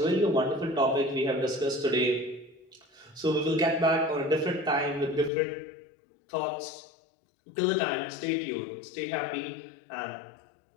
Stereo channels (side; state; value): right; drops out; at 5.3 s